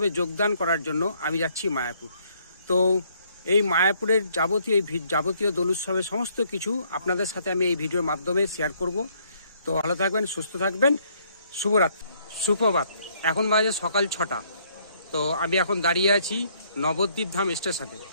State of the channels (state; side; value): inverted; both; correlation -0.67